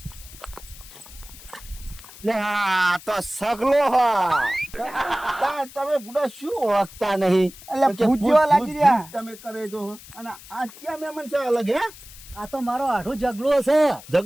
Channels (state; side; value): noise; left; hiss, 18 dB below the sound